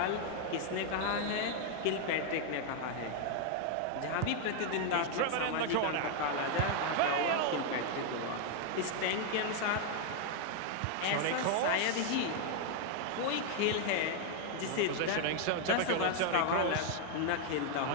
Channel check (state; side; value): different; both; correlation 0.00